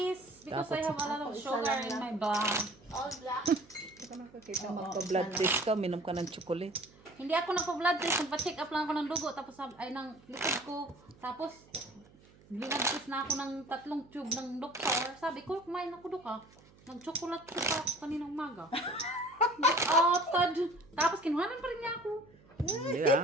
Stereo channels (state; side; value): noise; right; hum, 26 dB below the sound